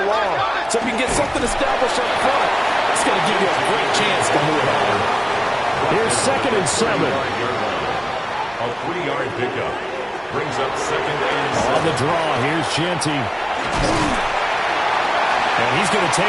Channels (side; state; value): both; identical; correlation 1.00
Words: along. So if you can get something established up front, it's going to give you a great chance to move on. Here's 2nd and 7. A 3-yard pickup brings up 2nd and 7. On the draw, here's Genty. And he's going to